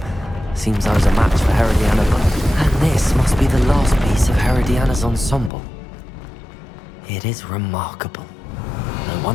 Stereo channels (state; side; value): drops out; right; at 5.5 s